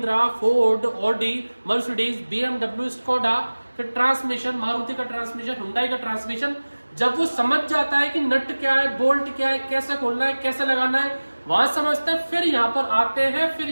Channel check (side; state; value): both; inverted; correlation -1.00